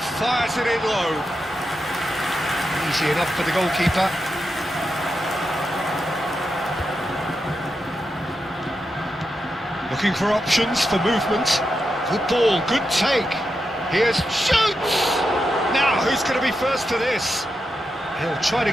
Fires it in low. Easy enough for the goalkeeper. Looking for options for movement. Good ball, good take. Here's shoots! Now, who's going to be first to this? He'll try to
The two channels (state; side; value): normal; both; correlation 0.87